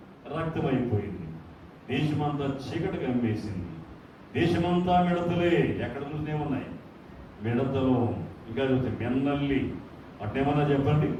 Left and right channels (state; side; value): identical; both; correlation 1.00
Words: రక్తమైపోయింది. దేశమంతా చీకటి కమ్మేసింది. దేశమంతా మిడతలే. ఎక్కడ చూసినే ఉన్నాయి మిడతలు. ఇంకా చూస్తే మెన్నల్లి, అట్టేమన్నా చెప్పండి.